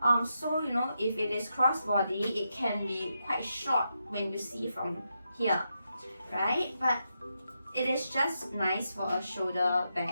So you know, if it is crossbody, it can be quite short when you see from here, right? But it is just nice for a shoulder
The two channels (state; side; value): inverted; both; correlation -0.85